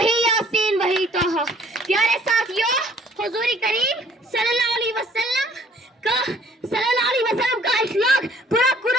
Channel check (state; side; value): normal; both; correlation 0.58